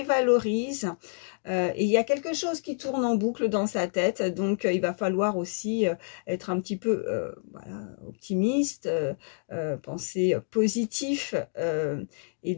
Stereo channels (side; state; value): right; silent; digital silence